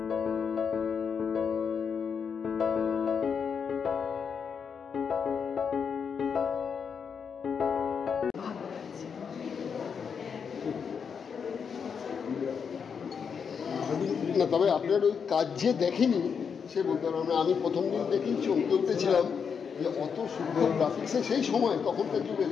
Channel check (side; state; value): right; quieter; 6.5 dB